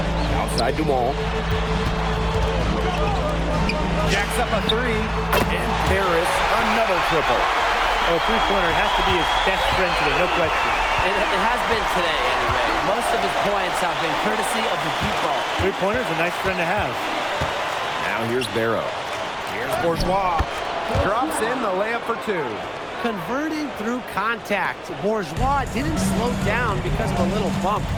Outside Dumont. Jacks up a three. And Paris, another triple. Oh, three-pointer has to be his best friend today, no question. It has been today, anyway. Most of his points have been courtesy of the deep ball. Three-pointer's a nice friend to have. Now here's Barrow. Here's Bourgeois. Drops in the layup for two. Converting through contact. Bourgeois didn't slow down because of a little bump.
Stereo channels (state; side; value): identical; both; correlation 1.00